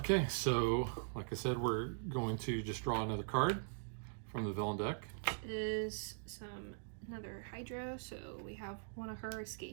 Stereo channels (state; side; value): silent; left; digital silence